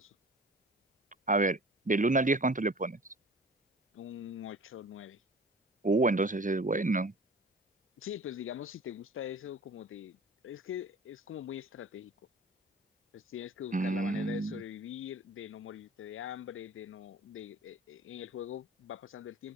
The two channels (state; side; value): normal; both; correlation 0.43